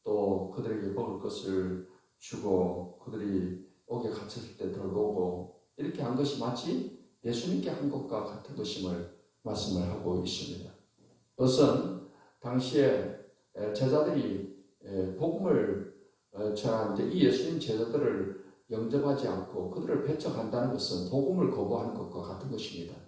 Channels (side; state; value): both; identical; correlation 1.00